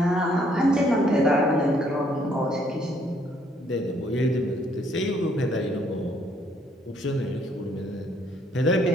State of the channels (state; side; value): normal; both; correlation 0.67